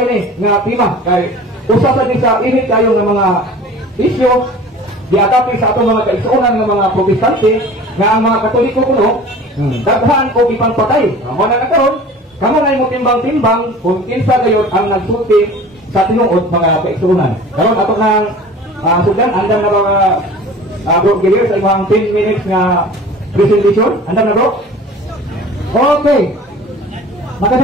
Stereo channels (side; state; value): both; normal; correlation 0.42